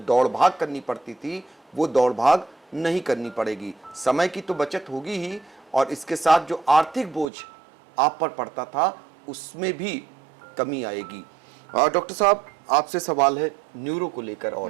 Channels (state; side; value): drops out; left; at 7.2 s